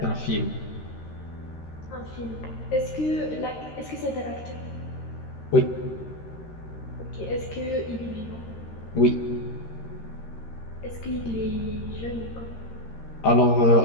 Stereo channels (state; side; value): late; right; 13 ms